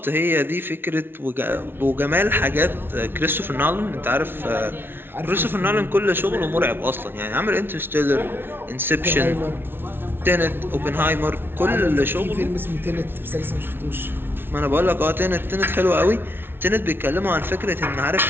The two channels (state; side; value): late; left; 0.11 ms